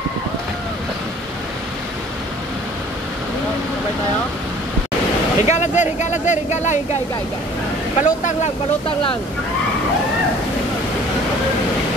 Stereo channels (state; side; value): normal; both; correlation 0.52